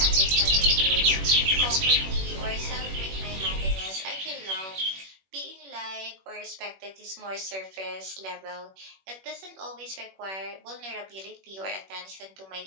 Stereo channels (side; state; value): left; late; 21 ms